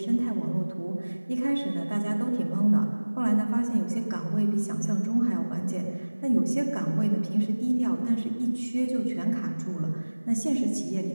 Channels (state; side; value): inverted; both; correlation -1.00